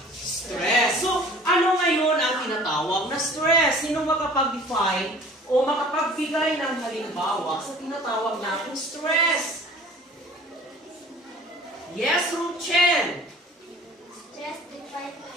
stress. So, ano ngayon ang tinatawag na stress? Sino makapag-define o makapagbigay ng halimbawa sa tinatawag nating stress? Yes, Ruchen. Stress defines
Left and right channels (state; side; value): normal; both; correlation 0.47